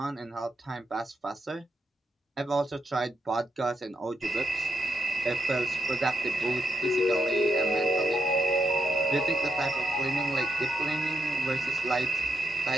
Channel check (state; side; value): normal; both; correlation 0.80